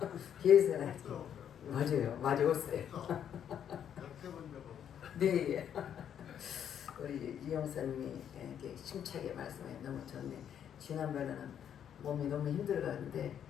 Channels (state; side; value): quieter; right; 9.1 dB